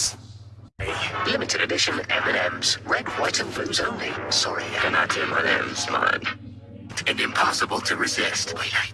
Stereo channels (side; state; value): both; identical; correlation 1.00